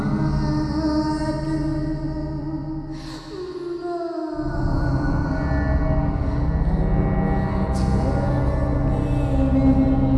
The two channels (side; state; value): both; identical; correlation 1.00